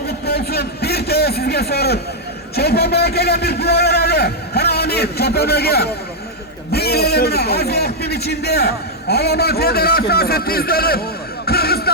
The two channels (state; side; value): normal; both; correlation -0.03